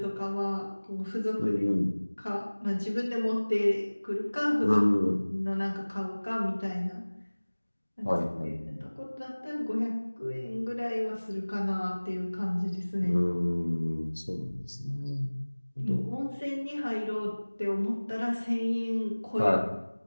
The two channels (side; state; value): both; inverted; correlation -1.00